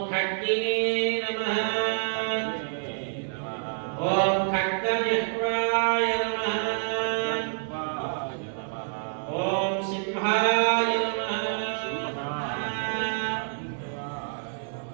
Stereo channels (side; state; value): left; silent; 60 dB below the other